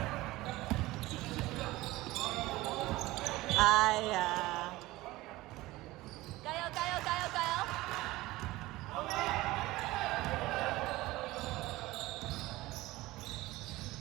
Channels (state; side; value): quieter; left; 18.8 dB